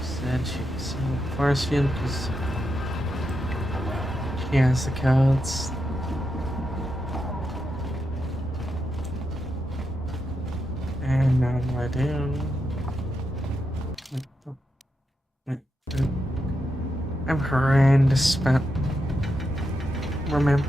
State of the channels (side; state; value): both; normal; correlation 0.85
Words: said she could sell forest field because she has the codes. And now what do I do? I'm horrendous about